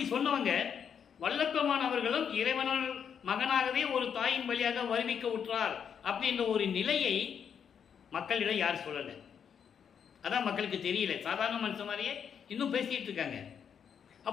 சொன்னவங்க வல்லப்பெருமான் அவர்களும் இறைவனால் மகனாகவே ஒரு தாயின் வழியாக வருவிக்க உற்றார் அப்படின்ற ஒரு நிலையை மக்களிடம் யார் சொல்லலை. அதான் மக்களுக்கு தெரியல. சாதாரண மனுஷன் மாதிரியே இன்னும் பேசிகிட்டு இருக்காங்க.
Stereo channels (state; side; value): quieter; right; 7.6 dB